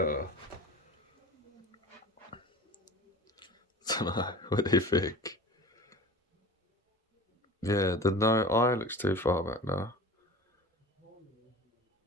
I don't know, what do you think? Yeah, the eye looks too far back now.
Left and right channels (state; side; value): normal; both; correlation 0.37